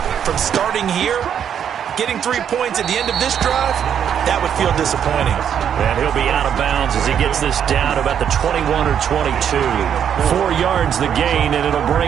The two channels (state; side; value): quieter; left; 8.7 dB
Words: from starting here. Getting 3 points at the end of this drive, that would feel disappointing. And he'll be out of bounds as he gets this down about the 21 or 22. 4 yards the gain, and it'll